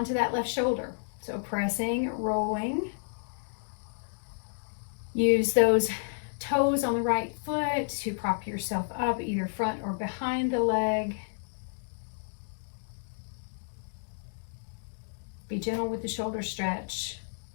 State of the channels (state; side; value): silent; right; digital silence